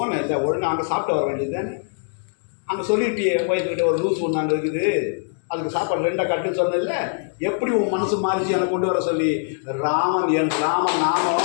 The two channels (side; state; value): right; silent; digital silence